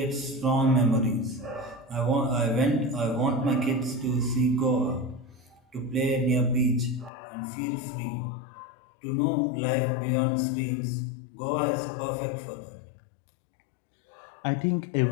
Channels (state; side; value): drops out; right; at 7.1 s